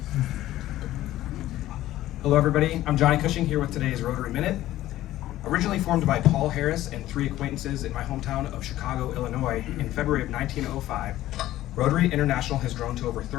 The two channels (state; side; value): quieter; right; 14.6 dB